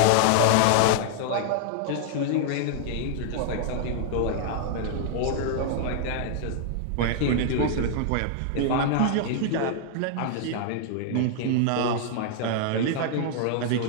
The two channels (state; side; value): different; both; correlation -0.01